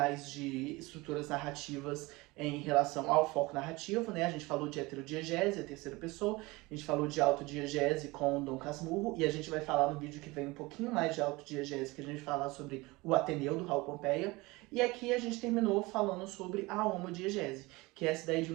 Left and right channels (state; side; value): quieter; left; 22.6 dB